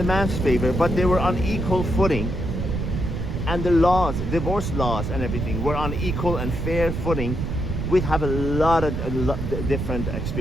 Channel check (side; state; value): right; noise; rumble, 3 dB below the sound